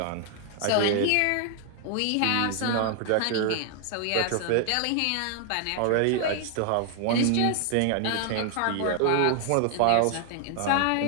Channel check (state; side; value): different; both; correlation 0.00